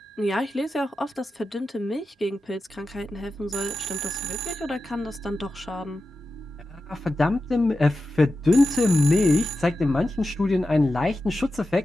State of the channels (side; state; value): both; normal; correlation 0.91